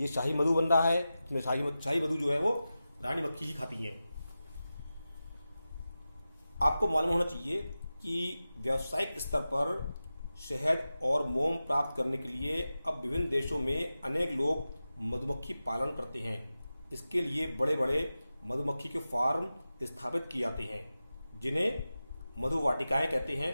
शाही मधु बन रहा है। इसमें शाही मधु जो है वो रानी मक्खी ही खाती है। आपको मालूम होना चाहिए कि व्यावसायिक स्तर पर शहद और मोम प्राप्त करने के लिए अब विभिन्न देशों में अनेक लोग मधुमक्खी पालन करते हैं। इसके लिए बड़े बड़े मधुमक्खी के फार्म स्थापित किए जाते हैं, जिन्हें मधुवाटिकाएं कहते हैं।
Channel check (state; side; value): inverted; both; correlation -0.94